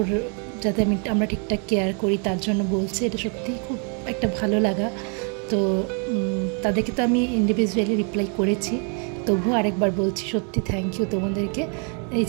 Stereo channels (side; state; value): left; quieter; 39.3 dB